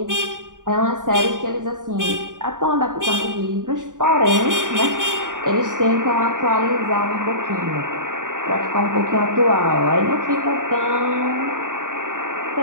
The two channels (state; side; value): late; left; 0.88 ms